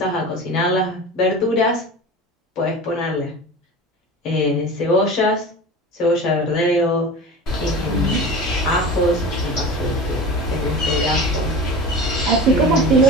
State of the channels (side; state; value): both; normal; correlation 0.33